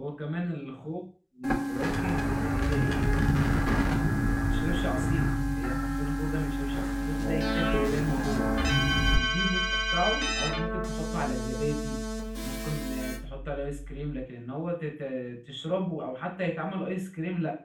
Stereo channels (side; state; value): both; identical; correlation 1.00